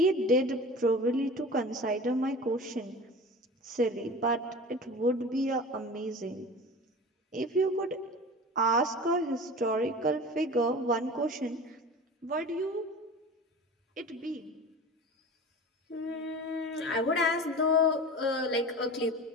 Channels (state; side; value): normal; both; correlation 0.35